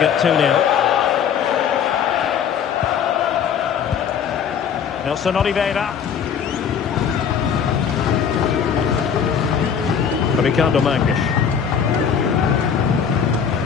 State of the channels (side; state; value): right; quieter; 7.5 dB